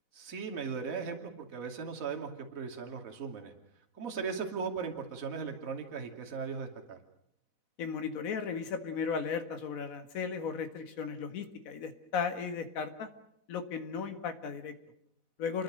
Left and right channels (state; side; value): late; right; 4.1 ms